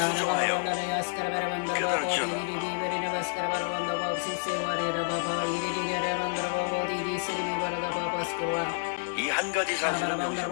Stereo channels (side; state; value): right; silent; digital silence